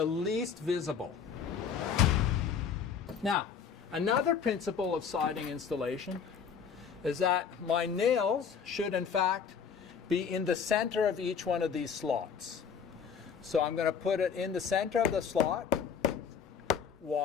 least visible. Now, another principle of siding installation is that my nails should in fact be in the center of each one of these slots. So I'm going to put it in the center of the slot.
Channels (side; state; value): right; quieter; 6.7 dB